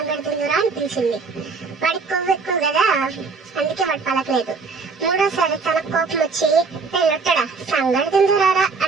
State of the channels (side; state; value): left; quieter; 4.6 dB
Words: తిందురా అని పిలిచింది. వాడికి కొవ్వు ఎక్కువ కదా, అందుకే వాడు పలకలేదు. 3వసారి తన కోపం వచ్చి లొట్టడా సంగడి తిందురారా